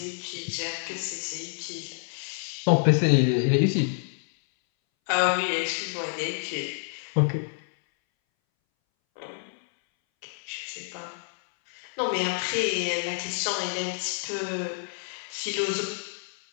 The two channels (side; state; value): right; silent; 59 dB below the other